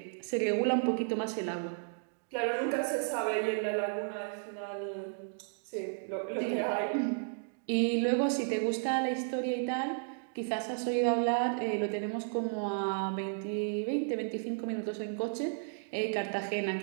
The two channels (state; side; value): silent; left; digital silence